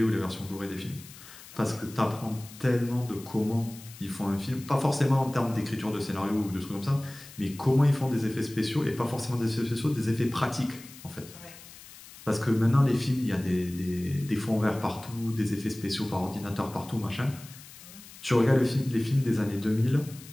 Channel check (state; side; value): noise; left; hiss, 18 dB below the sound